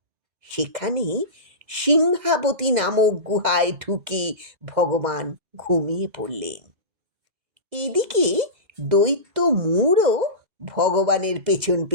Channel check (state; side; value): late; left; 2.0 ms